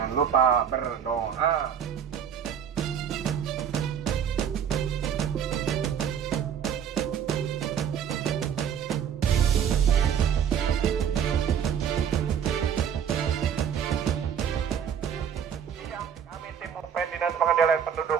lupa berdoa. Kami tim Mupen Dinas Pengendalian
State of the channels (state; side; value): quieter; left; 8.3 dB